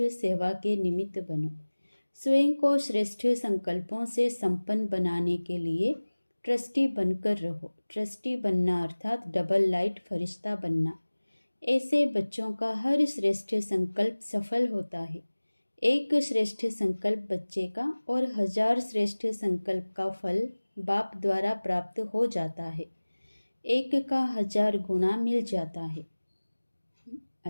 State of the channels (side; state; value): both; inverted; correlation -1.00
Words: सेवा के निमित्त बनो। स्वयं को श्रेष्ठ संकल्पों से संपन्न बनाने के लिए ट्रस्टी बनकर रहो। ट्रस्टी बनना अर्थात डबल लाइट फरिश्ता बनना। ऐसे बच्चों का हर श्रेष्ठ संकल्प सफल होता है। एक श्रेष्ठ संकल्प बच्चे का और 1000 श्रेष्ठ संकल्प का फल बाप द्वारा प्राप्त हो जाता है। एक का 1000 गुना मिल जाता है।